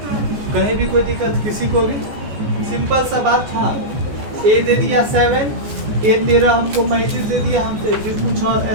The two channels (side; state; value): left; late; 14 ms